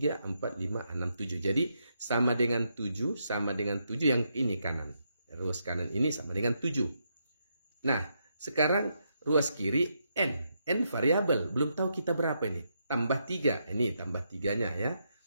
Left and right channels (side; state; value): both; inverted; correlation -0.80